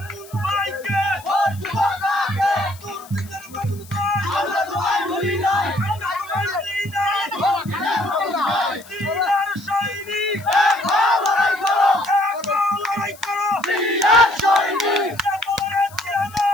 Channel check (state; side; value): noise; left; hiss, 21 dB below the sound